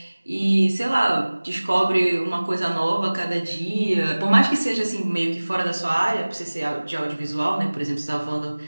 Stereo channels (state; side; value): inverted; both; correlation -1.00